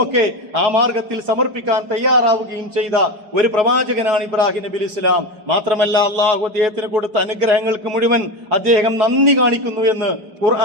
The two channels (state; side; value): late; left; 5.0 ms